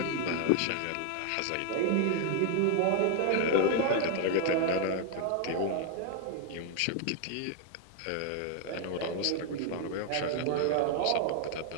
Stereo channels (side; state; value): both; different; correlation 0.00